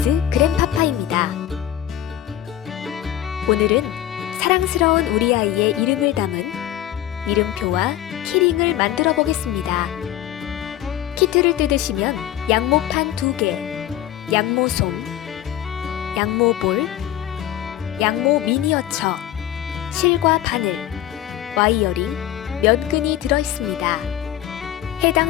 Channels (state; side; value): quieter; right; 12.5 dB